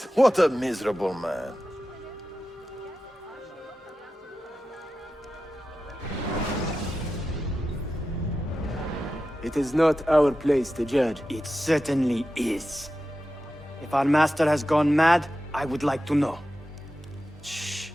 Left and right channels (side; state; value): both; normal; correlation 0.92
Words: what a miserable man. It is not our place to judge. It certainly is. If our master has gone mad, I would like to know. Shh.